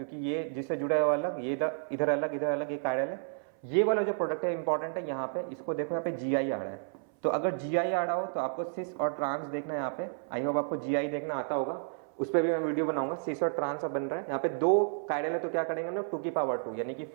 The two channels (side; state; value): left; silent; 57 dB below the other